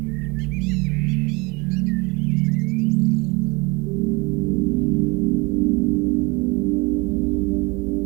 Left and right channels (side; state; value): left; quieter; 26.1 dB